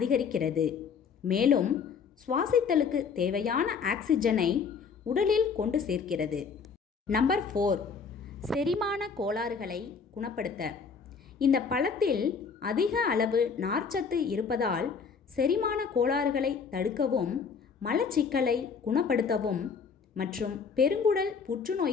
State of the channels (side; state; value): right; quieter; 5.8 dB